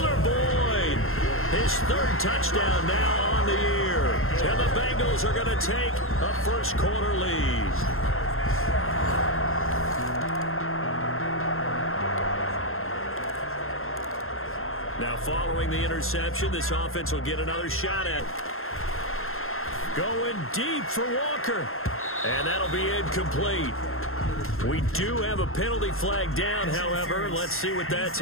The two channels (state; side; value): late; right; 0.61 ms